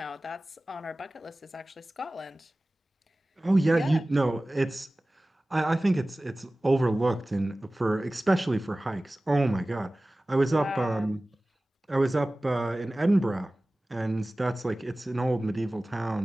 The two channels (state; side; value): normal; both; correlation 0.97